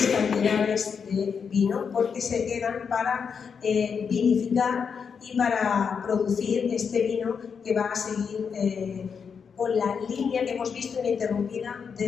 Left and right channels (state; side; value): quieter; right; 6.3 dB